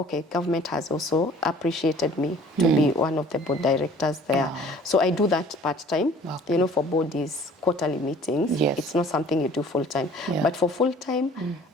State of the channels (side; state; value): both; normal; correlation 0.52